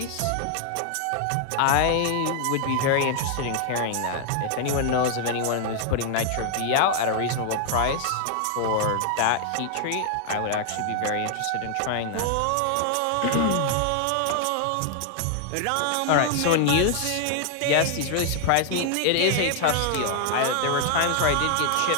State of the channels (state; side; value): different; both; correlation 0.00